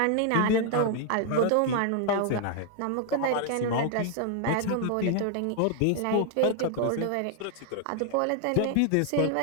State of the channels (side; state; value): both; different; correlation 0.00